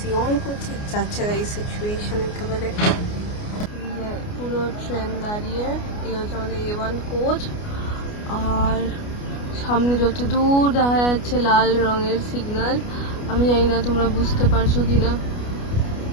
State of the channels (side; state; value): right; late; 29 ms